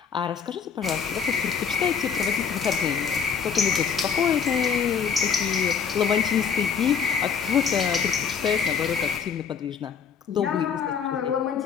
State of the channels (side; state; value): right; quieter; 6.7 dB